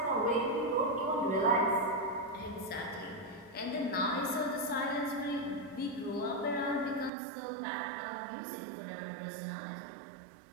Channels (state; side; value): drops out; left; at 7.1 s